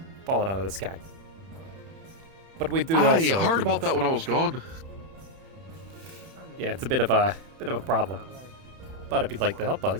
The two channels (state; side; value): late; left; 31 ms